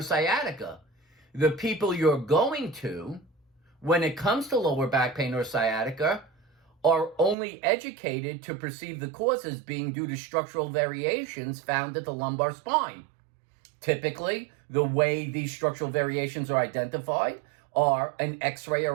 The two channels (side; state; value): left; drops out; at 7.4 s